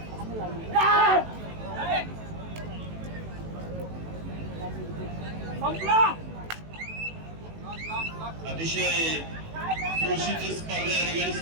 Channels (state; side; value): late; left; 18 ms